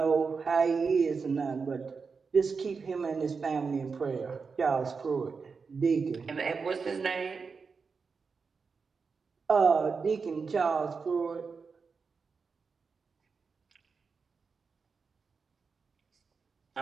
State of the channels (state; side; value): quieter; left; 5.1 dB